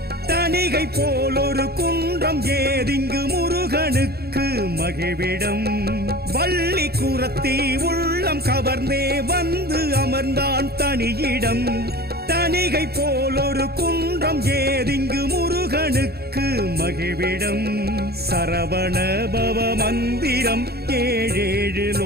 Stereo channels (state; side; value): late; left; 0.46 ms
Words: தணிகை போல் ஒரு குன்றம் ஏதிங்கு முருகனுக்கு மகிழ்விடம் வள்ளி குரத்தி உள்ளம் கவர்ந்தே வந்து அமர்ந்தான் தனியிடம் தணிகை போல் ஒரு குன்றம் ஏதிங்கு முருகனுக்கு மகிழ்விடம் சரவண பவ மந்திரம் ஏழேழு